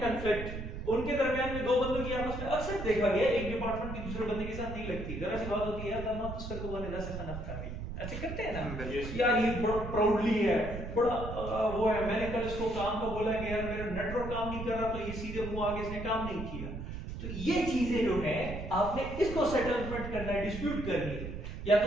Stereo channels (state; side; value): noise; right; rumble, 7 dB below the sound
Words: कंफ्लिक्ट, उनके दरमियान में दो बंदों की आपस में अक्सर देखा गया एक डिपार्टमेंट की दूसरे बंदे के साथ नहीं लगती, जरा सी बात होती है यार आप उसका को बने से खाना खा ऐसे करते हैं ना यार, ये बड़ा प्राउडली है, बड़ा वो है, मैंने कल इसको काम का बोला कि यार मेरा नेटवर्क काम नहीं कर रहा तो ये सीधे मुंह आगे इसने काम नहीं किया। तो ये चीजें जो है आपने इसको सेटलमेंट करना है, डिस्प्यूट करनी है, या